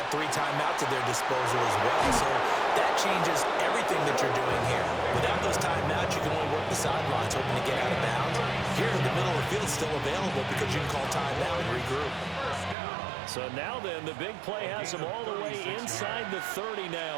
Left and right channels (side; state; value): left; drops out; at 12.8 s